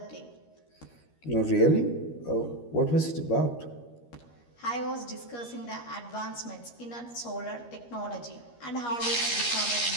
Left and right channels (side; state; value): right; late; 13 ms